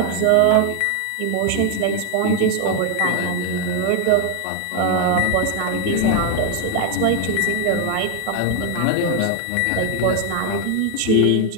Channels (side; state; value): both; different; correlation 0.01